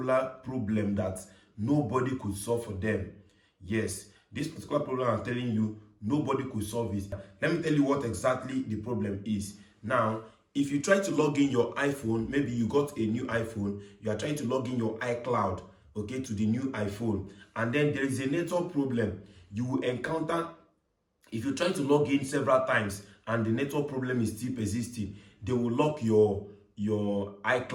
problem that nobody could solve for them. Yes, this particular problem I'm telling you, nobody could solve it. Let me tell you what exactly the problem is. Now, if you try to log in your iPhone, maybe you got a new iPhone, you are trying to log in your iCloud, okay, to the new iPhone, and then there is a network problem you will encounter. If you try to log in several times and the network problem is still persisting, they will lock your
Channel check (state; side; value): identical; both; correlation 1.00